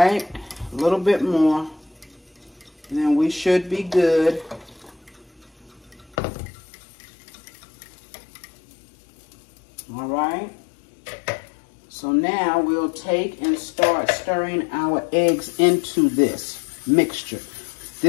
a little bit more, and then we should be good. All right. So now we'll take and start stirring our eggs into this mixture.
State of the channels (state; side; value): drops out; right; at 6.2 s